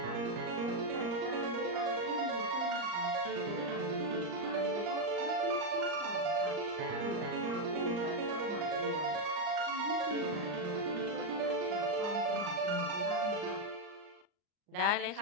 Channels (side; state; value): left; late; 39 ms